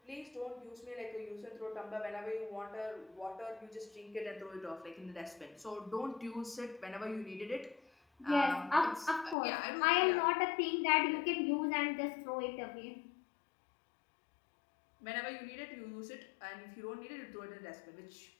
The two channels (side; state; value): right; drops out; at 9.3 s